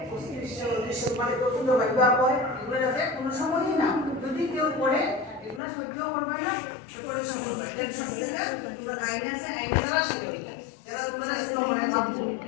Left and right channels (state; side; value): drops out; right; at 5.6 s